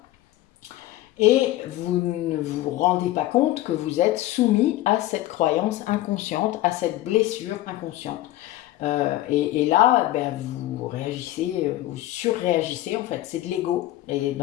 Et vous ne vous rendez pas compte que vous êtes soumis à cette croyance inconsciente, à cette blessure inconsciente. Et là, ben, vous réagissez, vous surréagissez en fait, c'est de l'ego. Et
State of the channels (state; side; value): quieter; right; 15.6 dB